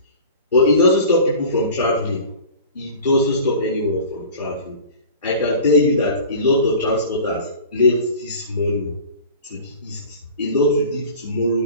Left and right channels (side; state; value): both; inverted; correlation -0.40